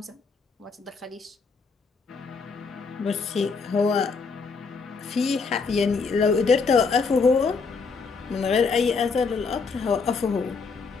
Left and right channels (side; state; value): right; quieter; 4.8 dB